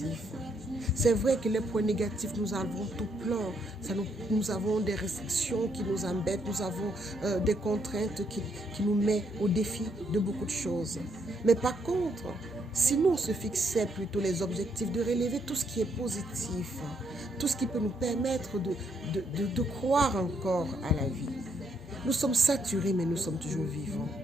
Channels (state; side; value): normal; both; correlation 0.74